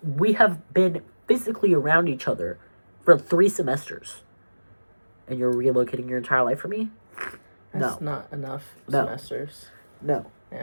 have been physically around each other for 3 semesters. And you're relocating your entire life for me? That's not enough semesters. No.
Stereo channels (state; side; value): inverted; both; correlation -1.00